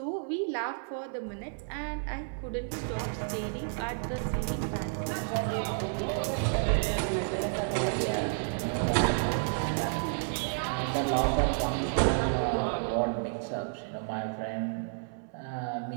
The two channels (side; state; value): left; silent; digital silence